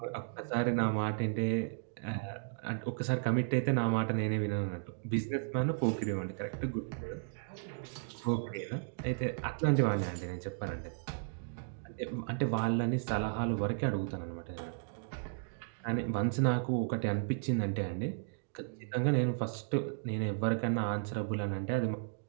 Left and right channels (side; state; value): left; silent; digital silence